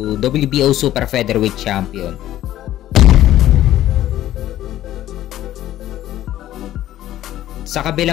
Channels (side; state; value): right; quieter; 13.3 dB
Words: WBO Super Featherweight Champion. Sa